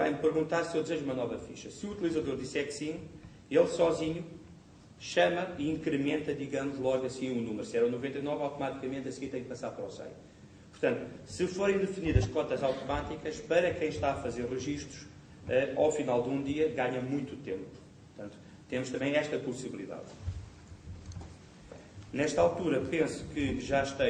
perguntar se eu desejo uma nova ficha. Se o utilizador disser que sim, ele sozinho chama e incrementa, digamos, logo assim o número. Se era o 99, automaticamente a seguir tem que passar para o 100. Portanto, se forem definidas cotas automáticas, para quem está a fazer registros, ao final de um dia ganha muito tempo. Portanto, temos também esta possibilidade. Nesta altura, penso que já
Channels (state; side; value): identical; both; correlation 1.00